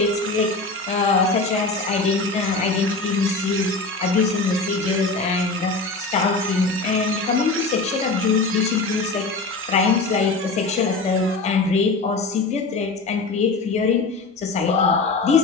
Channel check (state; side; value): quieter; right; 3.6 dB